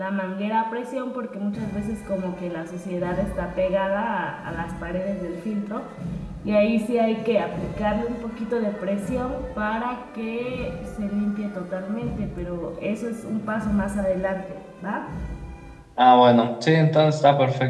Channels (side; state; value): both; identical; correlation 1.00